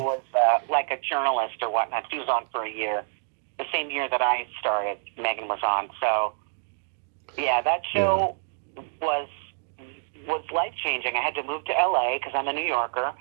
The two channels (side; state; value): left; silent; digital silence